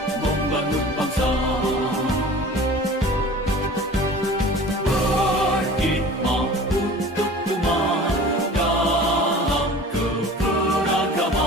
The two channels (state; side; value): normal; both; correlation 0.42